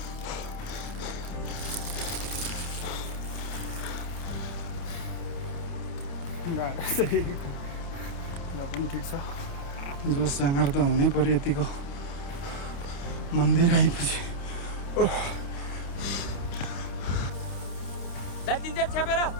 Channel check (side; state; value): right; late; 29 ms